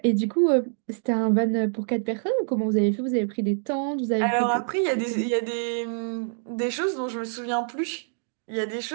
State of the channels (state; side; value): silent; left; digital silence